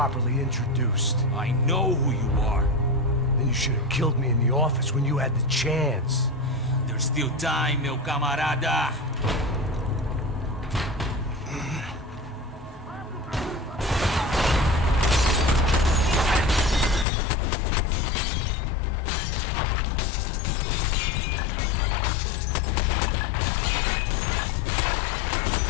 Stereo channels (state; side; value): drops out; right; at 17.1 s